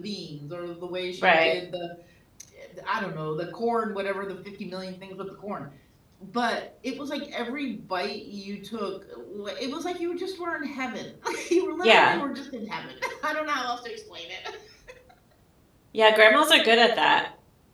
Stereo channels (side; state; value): both; identical; correlation 1.00